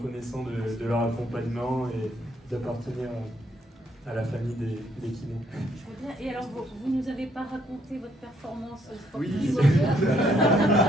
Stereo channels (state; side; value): normal; both; correlation 0.70